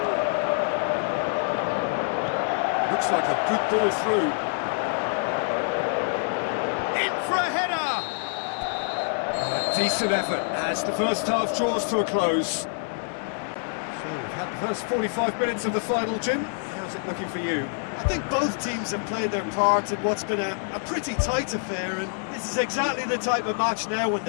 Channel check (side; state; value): right; silent; 61 dB below the other